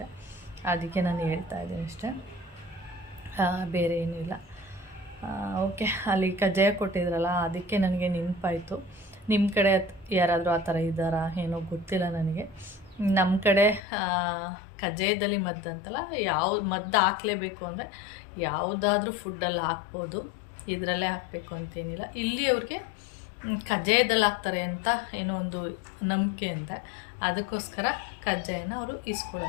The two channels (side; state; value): right; drops out; at 13.8 s